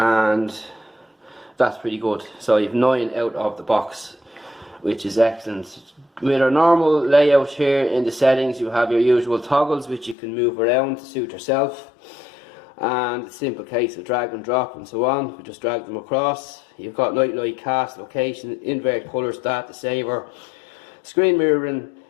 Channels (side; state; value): right; drops out; at 10.2 s